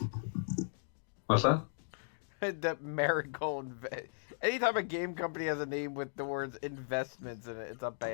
What's that? That Marigold. Anytime a game company has a name with the words investments in it, it's a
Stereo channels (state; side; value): silent; right; digital silence